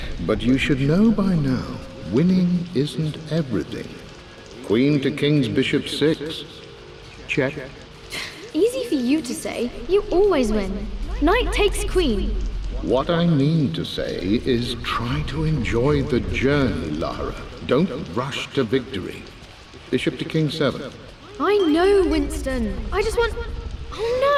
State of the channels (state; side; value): identical; both; correlation 1.00